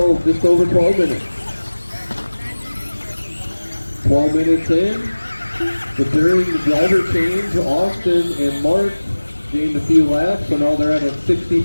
just over 12 minutes. 12 minutes in. But during the driver change, Austin and Mark gained a few laps, so now they're at a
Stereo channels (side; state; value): both; inverted; correlation -1.00